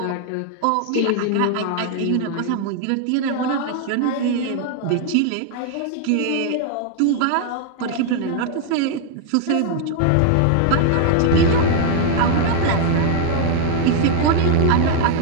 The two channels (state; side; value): different; both; correlation 0.00